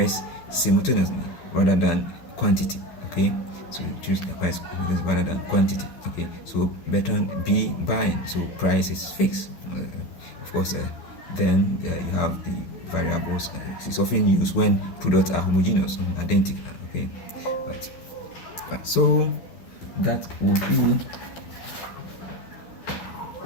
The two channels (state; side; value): late; right; 12 ms